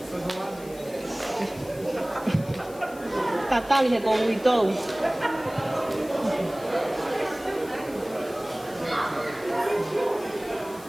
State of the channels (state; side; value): noise; left; hiss, 21 dB below the sound